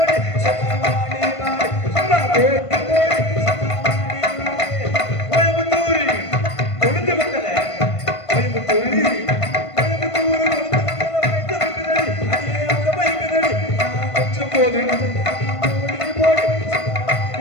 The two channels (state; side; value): late; right; 1.5 ms